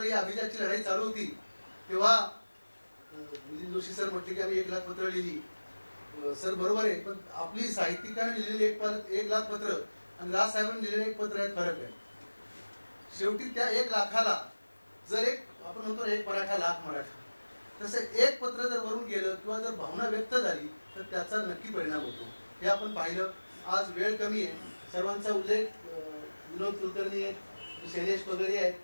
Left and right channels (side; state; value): both; inverted; correlation -1.00